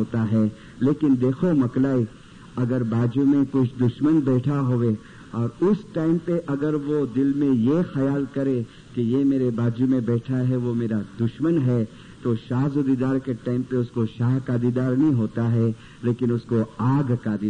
है. लेकिन देखो मकलाई, अगर बाजू में कुछ दुश्मन बैठा होवे और उस टाइम पे अगर वो दिल में ये ख्याल करे कि ये मेरे बाजू में बैठा है वो मेरा दुश्मन है, तो शाज़दीदार के टाइम पे उसको शाह का दीदार नहीं होता है, लेकिन उसको आग का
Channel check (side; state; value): both; identical; correlation 1.00